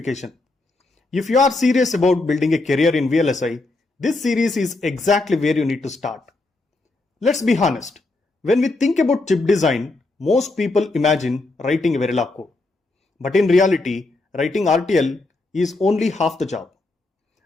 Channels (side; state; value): right; quieter; 3.1 dB